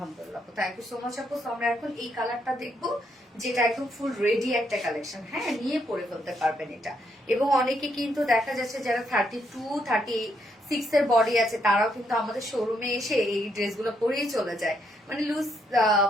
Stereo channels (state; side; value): normal; both; correlation 0.75